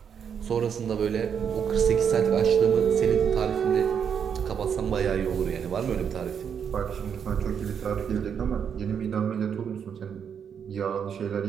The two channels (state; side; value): quieter; left; 7.6 dB